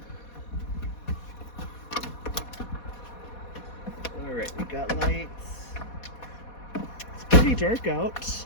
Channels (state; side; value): late; right; 4.2 ms